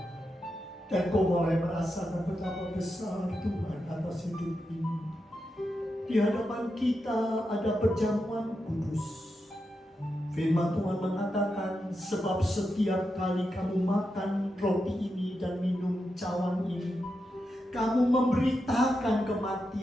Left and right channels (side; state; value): both; normal; correlation 0.87